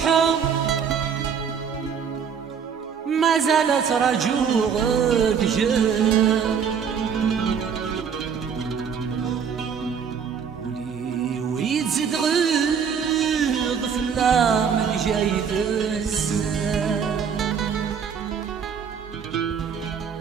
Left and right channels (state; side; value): quieter; left; 6.9 dB